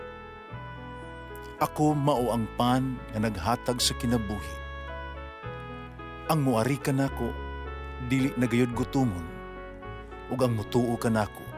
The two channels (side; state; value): both; identical; correlation 1.00